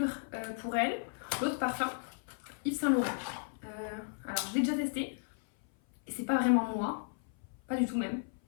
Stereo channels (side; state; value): right; silent; 55 dB below the other